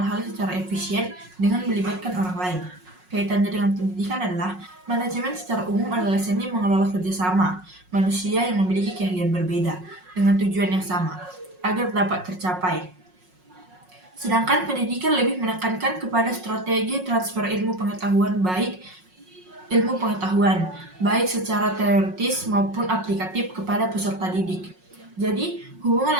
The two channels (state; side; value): late; left; 5.5 ms